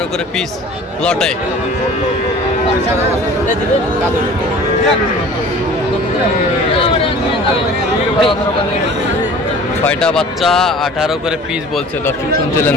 করে পিস লটে। ছয়টা বাচ্চা 18 করে পিস বলছে, দর্শক শুনছিলেন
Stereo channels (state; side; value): normal; both; correlation 0.45